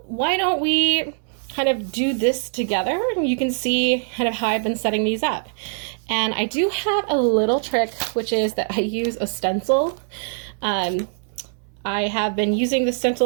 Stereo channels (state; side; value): silent; left; 64 dB below the other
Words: why don't we kind of do this together and you can see kind of how I've been setting these up. And I do have a little trick, which is that I use a stencil. I have been using the